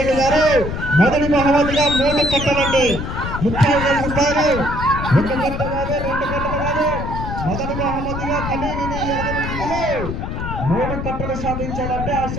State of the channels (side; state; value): left; noise; rumble, 5 dB below the sound